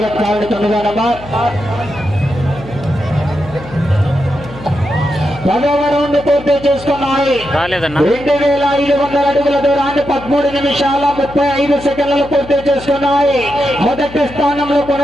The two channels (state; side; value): noise; left; hum, 16 dB below the sound